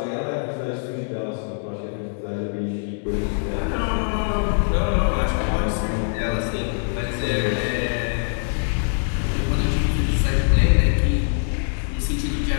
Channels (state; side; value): silent; right; 63 dB below the other